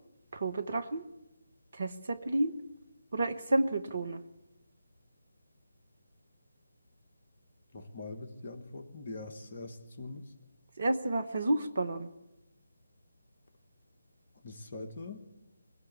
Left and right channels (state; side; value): inverted; both; correlation -0.90